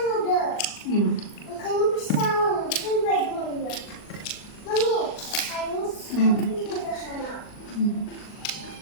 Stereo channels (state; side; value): late; right; 39 ms